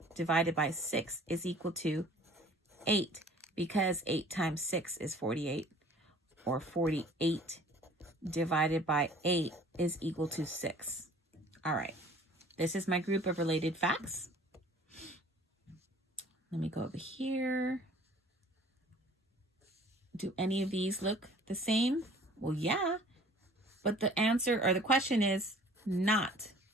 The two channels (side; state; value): both; normal; correlation 0.51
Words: divided by 6 is equal to 8, because 8 times 6 is 48, or 48 divided by 8 is equal to 6. All right, this is my group of related facts. Let me go over here. Do any of these look the same? Well, yeah, but the answer or the question is not.